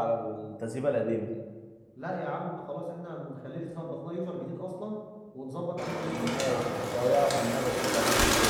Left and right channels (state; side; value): identical; both; correlation 1.00